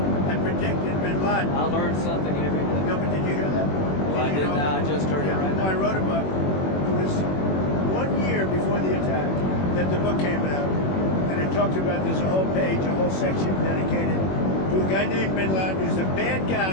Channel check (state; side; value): late; right; 21 ms